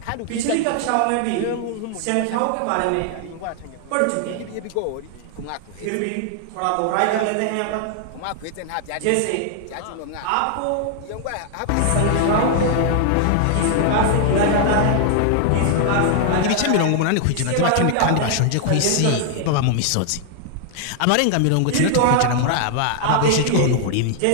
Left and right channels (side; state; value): both; different; correlation 0.00